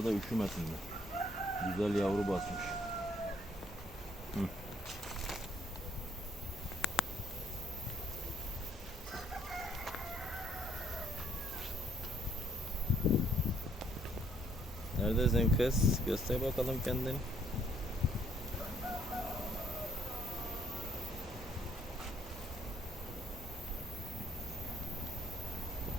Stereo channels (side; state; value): both; normal; correlation 0.66